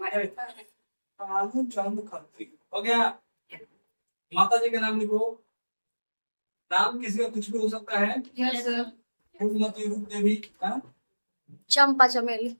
कालू चंद खत्री। हो गया। माता जी का नाम लिखो, नाम किसी का कुछ भी हो सकता है। फूलमती, रूप देवी, चंपा, चमेली,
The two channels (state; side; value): inverted; both; correlation -1.00